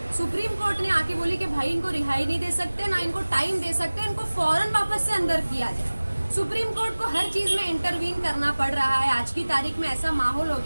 सुप्रीम कोर्ट ने आके बोली कि भाई इनको रिहाई नहीं दे सकते, ना इनको टाइम दे सकते, इनको फौरन वापस से अंदर किया जाए। सुप्रीम कोर्ट को हर चीज में इंटरवीन करना पड़ रहा है। आज की तारीख में ऐसा माहौल हो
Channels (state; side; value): inverted; both; correlation -1.00